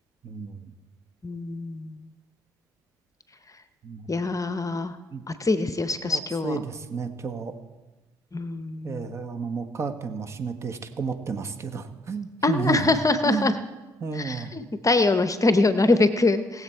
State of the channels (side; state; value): both; normal; correlation 0.68